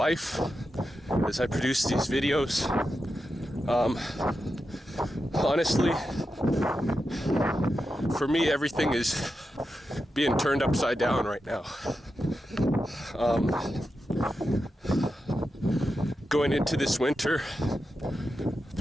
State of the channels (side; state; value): both; normal; correlation 0.89